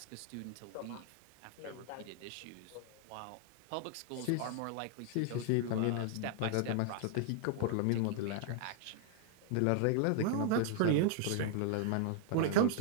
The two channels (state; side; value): different; both; correlation -0.01